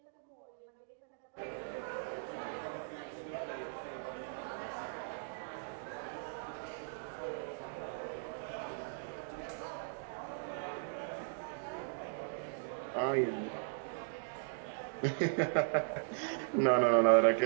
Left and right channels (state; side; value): silent; left; digital silence